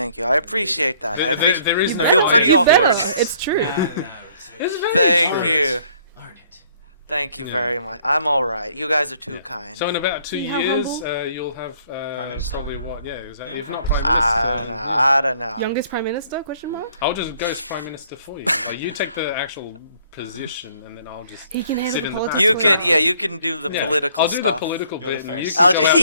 you. I appreciate that. There is I feel pretty You awkward. better. It's true. Thank you. Learn it. Thank you very much. I'm all right. You guys are too kind. So in about 2 See how years, humble? You'll have Minister. probably what? Yeah, exactly. If not Prime Minister, I don't know. Youngest prime minister? Question mark. I'll just go as Prime Minister for you. You take the actual position, and then I'll just He can handle sit the in the politics. back. You can, you can do the political I'll do stuff. the political You're the bit, and you face. can I'll go out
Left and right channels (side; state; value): both; inverted; correlation -0.61